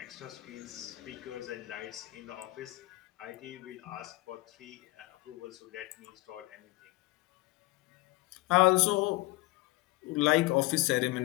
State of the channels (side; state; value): right; quieter; 20.8 dB